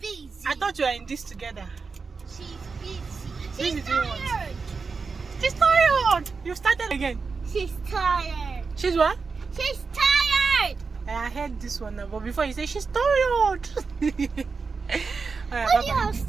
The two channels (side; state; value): left; quieter; 4.8 dB